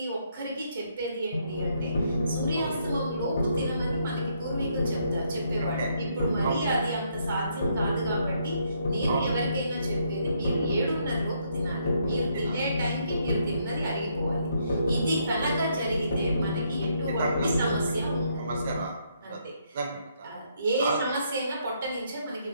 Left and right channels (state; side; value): inverted; both; correlation -0.73